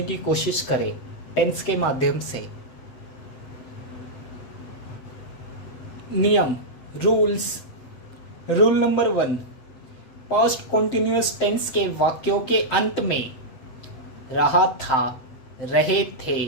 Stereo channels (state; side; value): late; right; 7.7 ms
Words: की कोशिश करें टेंस के माध्यम से। नियम rules. Rule number 1, past continuous tense के वाक्यों के अंत में रहा था, रहे थे,